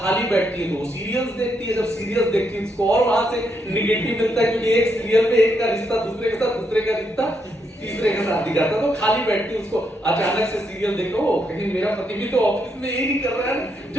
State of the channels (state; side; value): normal; both; correlation 0.78